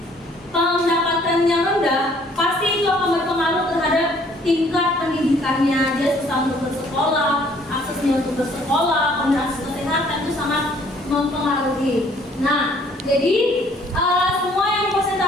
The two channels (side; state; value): both; normal; correlation 0.60